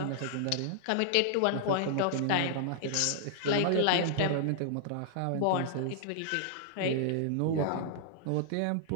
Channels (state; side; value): different; both; correlation -0.01